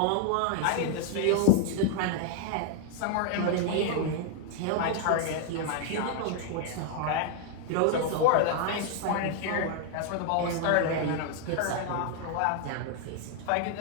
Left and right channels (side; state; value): both; different; correlation 0.00